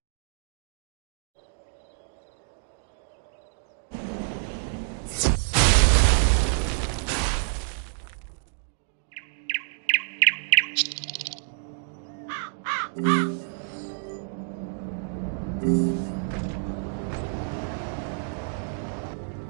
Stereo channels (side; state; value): left; silent; digital silence